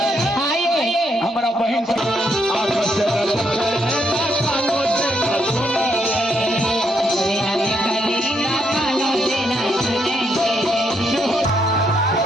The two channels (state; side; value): normal; both; correlation 0.76